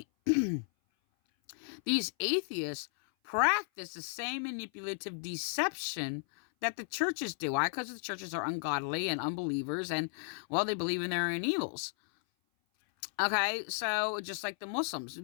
these atheists practice the same manipulative deception that the churches do. Why? Because the churches are ungodly and unbelievers, and, well, they believe in their own evils. Okay, so just like the Muslims,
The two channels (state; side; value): silent; right; 55 dB below the other